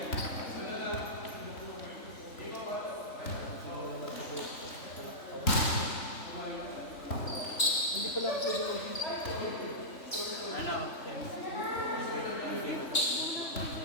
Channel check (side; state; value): right; late; 3.5 ms